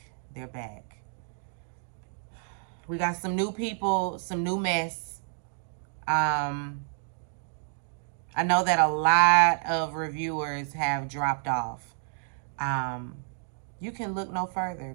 They're back. We got some new people, some new mess. I know that a lot of reviewers have dropped off. You can look no further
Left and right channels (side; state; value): left; silent; digital silence